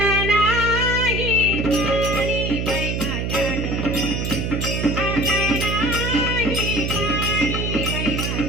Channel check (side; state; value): right; noise; hum, 1 dB below the sound